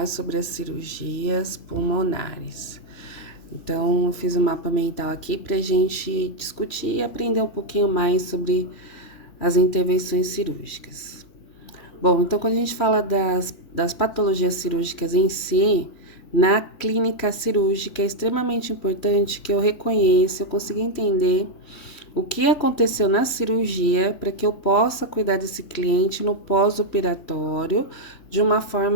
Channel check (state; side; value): late; right; 3.1 ms